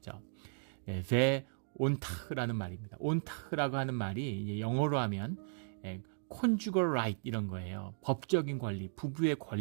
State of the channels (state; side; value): silent; left; digital silence